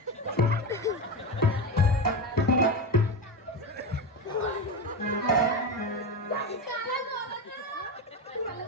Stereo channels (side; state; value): both; normal; correlation 0.18